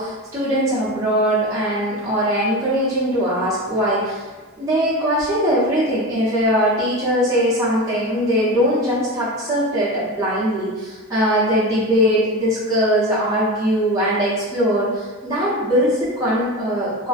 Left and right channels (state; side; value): normal; both; correlation 0.25